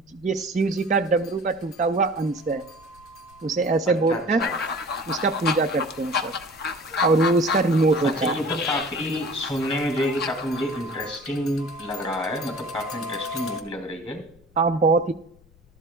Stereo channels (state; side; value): noise; left; rumble, 29 dB below the sound